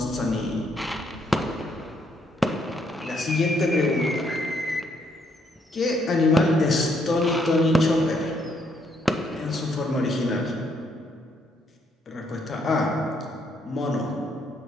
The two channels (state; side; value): normal; both; correlation 0.72